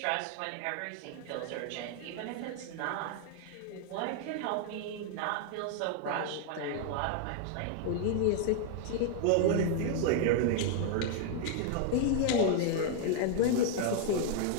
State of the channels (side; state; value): both; different; correlation 0.00